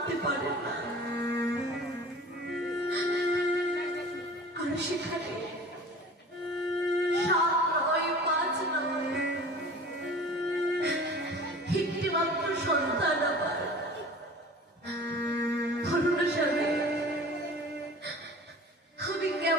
পারে না। আর সেখানে 7 নয় 5 নয় একটি মাত্র সন্তান আবার ধরুন স্বামী, আমি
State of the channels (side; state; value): both; normal; correlation 0.41